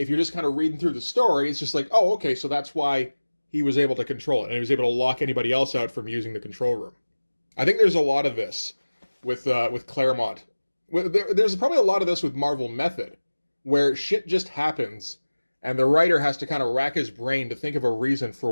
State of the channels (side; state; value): both; inverted; correlation -1.00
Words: you're just kind of reading through the story, it's just like, oh, okay, so that's why he was able to control it, and he was able to lock anybody else out from using the control room. I think there's a lot of this with Claremont. There's probably a lot of this with Marvel Method, where shit just happens, and the writer has to kind of rack his brain to think of a reason for